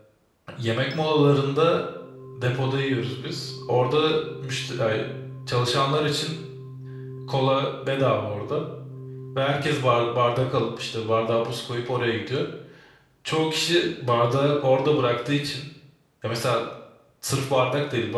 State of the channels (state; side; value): identical; both; correlation 1.00